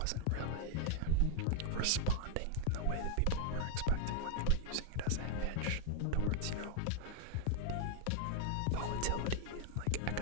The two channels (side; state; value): both; different; correlation 0.00